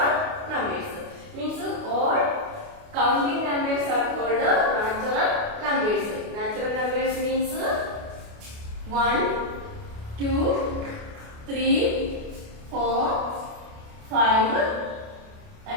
numbers. Means all counting numbers are called natural numbers. Natural numbers means 1, 2, 3, 4, 5,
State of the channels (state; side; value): late; left; 28 ms